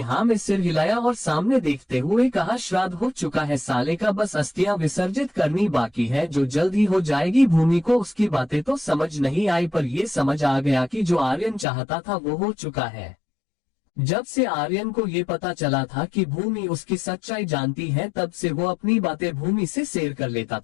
हाँ में सिर हिलाया और सामने देखते हुए कहा, श्राद्ध हो चुका है साले का, बस अस्थियां विसर्जित करनी बाकी है जो जल्द ही हो जाएगी। भूमि को उसकी बातें तो समझ नहीं आई, पर ये समझ आ गया कि जो आर्यन चाहता था वो हो चुका है। जब से आर्यन को ये पता चला था कि भूमि उसकी सच्चाई जानती है, तब से वो अपनी बातें भूमि से शेयर कर लेता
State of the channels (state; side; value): drops out; right; at 11.7 s